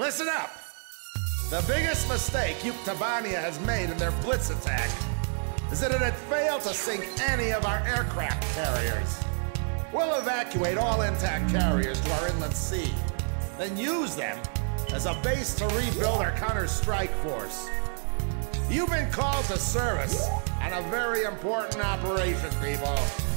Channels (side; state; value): left; silent; 59 dB below the other